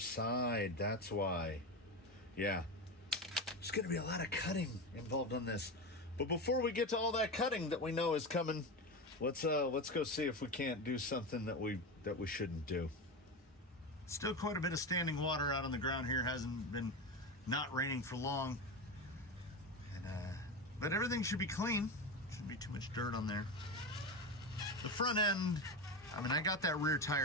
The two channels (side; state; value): both; normal; correlation 0.20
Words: That's why. Yeah. There's going to be a lot of cutting involved on this. But before we get to all that cutting that we know is coming, let's go see if we can't do something that we shouldn't do. Still quite a bit of standing water out on the ground here. Hasn't been not raining for long. And but everything should be clean. Shouldn't be too much dirt on there. The front end, I mean, I got that rear